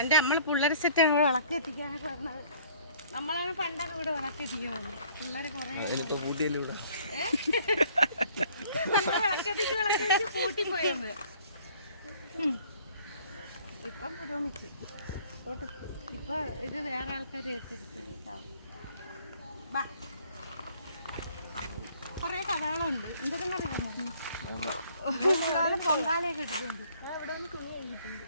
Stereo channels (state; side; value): inverted; both; correlation -0.57